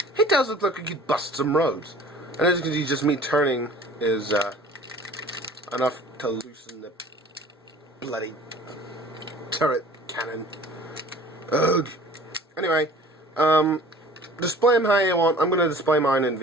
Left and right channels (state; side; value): normal; both; correlation 0.47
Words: It does look like he could bust some roads. And as you can see, just me turning is enough to loosen the bloody turret cannon. Ugh. Anyway, display him how you want. I'm going to display mine in